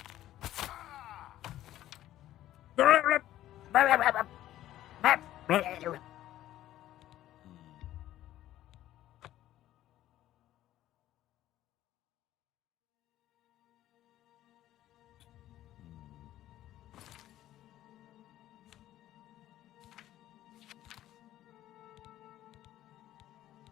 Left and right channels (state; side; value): quieter; right; 13.5 dB